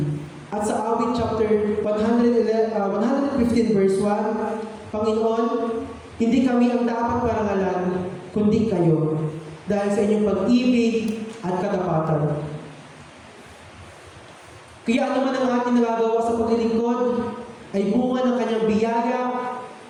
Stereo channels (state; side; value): identical; both; correlation 1.00